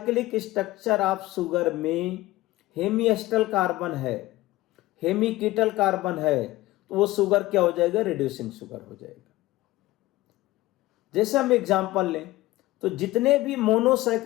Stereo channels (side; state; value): right; quieter; 18.3 dB